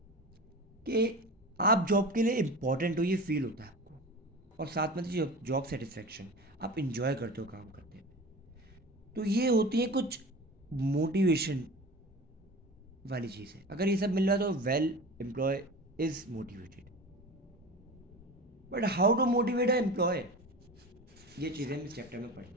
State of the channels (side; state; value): both; normal; correlation 0.33